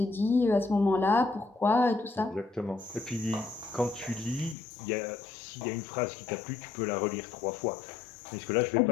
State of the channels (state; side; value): drops out; right; at 4.5 s